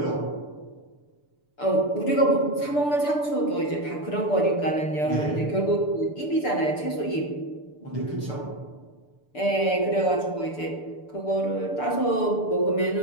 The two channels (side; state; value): right; late; 6.8 ms